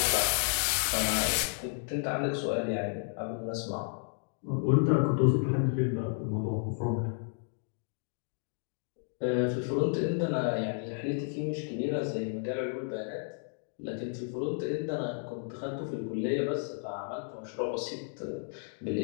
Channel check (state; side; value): silent; right; 56 dB below the other